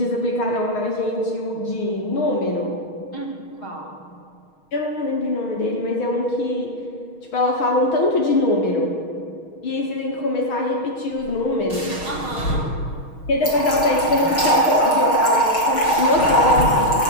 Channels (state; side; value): late; right; 6.4 ms